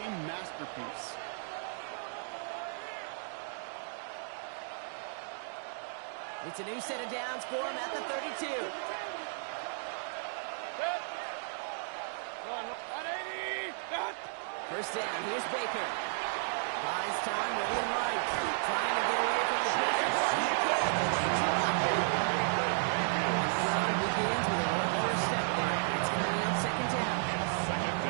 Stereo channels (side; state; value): left; silent; digital silence